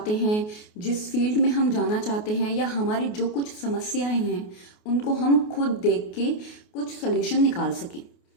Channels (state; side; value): late; right; 28 ms